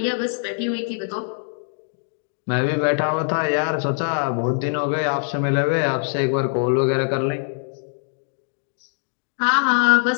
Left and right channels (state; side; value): silent; right; 61 dB below the other